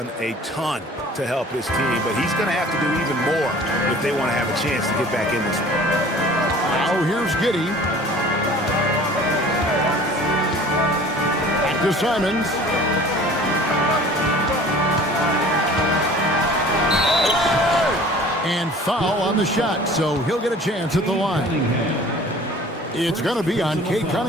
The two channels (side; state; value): both; normal; correlation 0.47